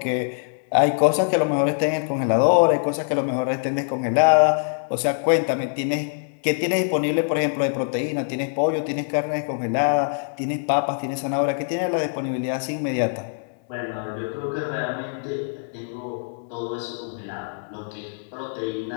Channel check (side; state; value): right; silent; digital silence